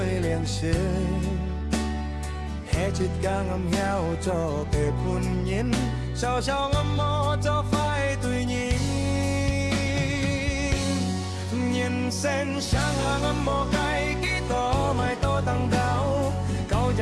liền ship hết chít cả ngầm heo cho tề phun nhìn sao sao ngầm mò cho phai tùy nhìn nhìn sen sáng là ngầm mò cái ký to mai to tăng cao câu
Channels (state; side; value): identical; both; correlation 1.00